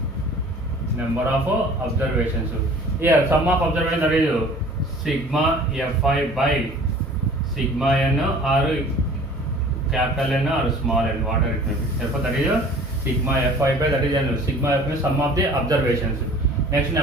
Here sum of observations, that is sigma fi by sigma n or capital N or small n, whatever it may be. Therefore that is sigma fi by, that is sigma f is sum of the observations. Next,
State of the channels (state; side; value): normal; both; correlation 0.48